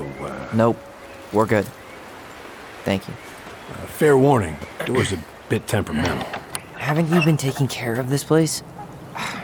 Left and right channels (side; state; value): both; identical; correlation 1.00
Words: Nope. We're good. Thank you. fair warning, door's a bit temperamental. Haven't you been taking care of this place?